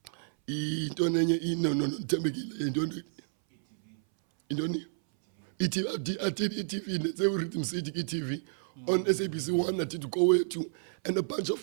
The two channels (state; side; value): silent; left; 57 dB below the other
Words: did ETV, they were Rhythm City ETV. On SABC 1, I did to go to, and a bunch of